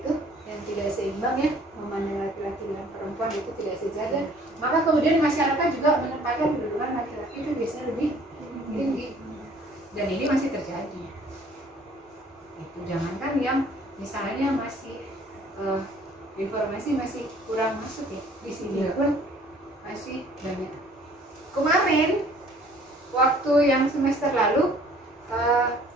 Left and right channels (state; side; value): normal; both; correlation 0.55